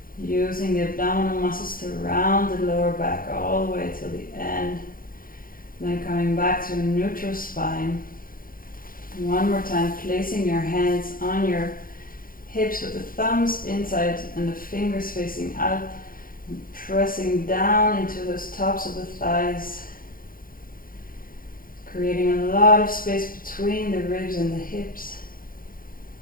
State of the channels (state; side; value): late; right; 0.41 ms